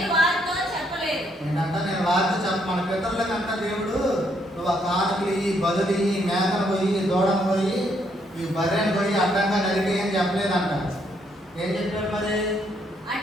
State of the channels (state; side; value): normal; both; correlation 0.72